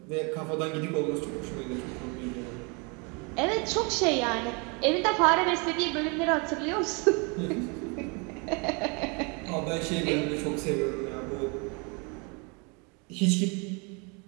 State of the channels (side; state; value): left; quieter; 32.0 dB